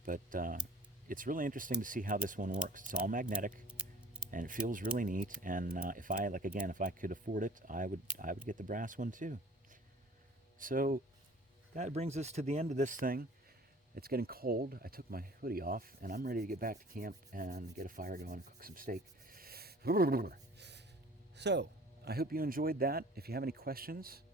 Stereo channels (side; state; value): both; normal; correlation 0.49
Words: But it's really interesting to see how this one works. It's all magnetic, and it feels really neat. And if I could afford it, I would get the brass one too. So that brings us to the end of this thing. It's getting cold. I took my hoodie off, and I'm ready to get back to camp and get a fire going and cook some steak. So I hope you enjoyed that. If you have any questions,